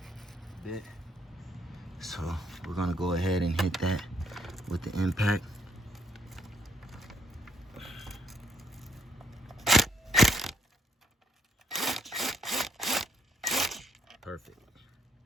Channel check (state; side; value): normal; both; correlation 0.72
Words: Bit. So we're gonna go ahead and hit that with the impact. Perfect.